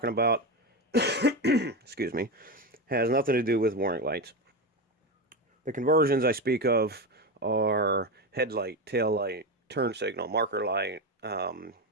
about, excuse me, has nothing to do with warning lights. The conversions I speak of are headlight, tail light, turn signal, marker light, and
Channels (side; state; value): both; normal; correlation 0.16